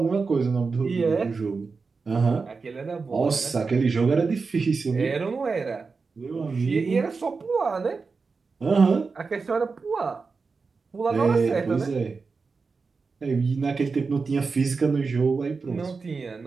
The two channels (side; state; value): left; quieter; 4.6 dB